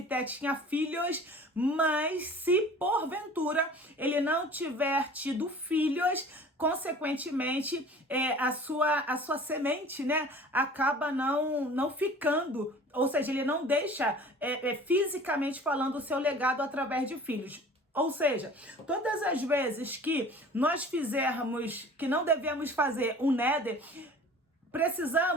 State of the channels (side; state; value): both; normal; correlation 0.45